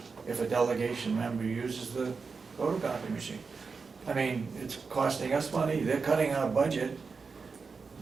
if a delegation member uses the photocopy machine. I mean, it's costing us money, they're cutting our budget.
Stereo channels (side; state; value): left; quieter; 4.9 dB